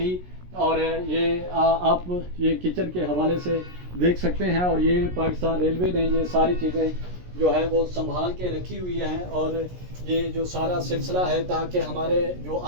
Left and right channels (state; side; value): late; left; 17 ms